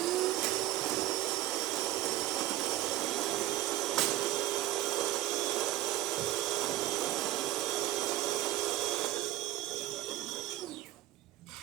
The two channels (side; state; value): left; quieter; 15.3 dB